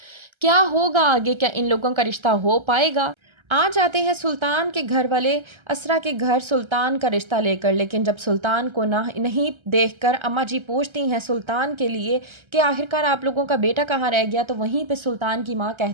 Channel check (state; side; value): late; left; 1.3 ms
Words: کیا ہوگا آگے، کیا ان لوگوں کا رشتہ ہو پائے گا۔ آ جاتے ہیں سلطان کے گھر والے اسرا کے گھر سلطان کا رشتہ لے کر، لیکن جب سلطان کو نہیں دیکھ کر اماں جی پوچھتی ہیں سلطان کے لیے کہ آخرکار آپ لوگوں کا بیٹا کہاں رہ گیا، تو وہیں پہ سلطان کی ماں